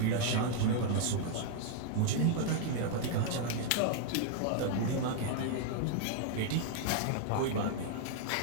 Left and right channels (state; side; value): different; both; correlation 0.00